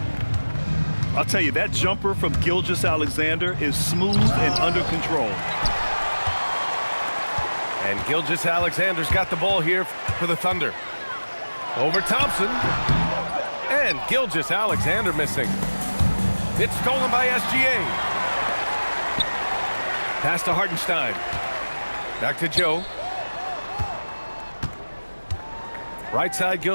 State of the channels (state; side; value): inverted; both; correlation -1.00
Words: I'll tell you, that jumper from Gilgeous-Alexander is smooth and under control. And Gilgeous-Alexander's got the ball here for the Thunder. Over Thompson. And Gilgeous-Alexander missing. It's stolen by SGA. Pass to Hartenstein. Back to Joe. Right side,